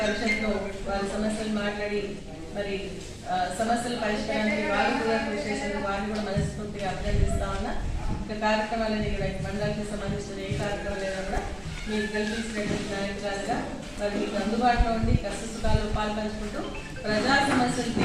పరిషత్లో వారి సమస్యలు మాట్లాడి మరి సమస్యల పరిష్కారానికి వారు కూడా కృషి చేసినందుకు వారిని కూడా మనస్ఫూర్తిగా అభినందిస్తా ఉన్నా. ఇంకా కార్యక్రమాలని ఇక్కడ మండలానికి సంబంధించిన ఏ కార్యక్రమాలైనా కూడా మీరు కల్పించినటువంటి నాయకులుగా మరి మీకు అందుబాటులో ఉండి కష్టసుఖాలు పాల్పంచుకుంటూ ప్రజా సమస్యలు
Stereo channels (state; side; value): identical; both; correlation 1.00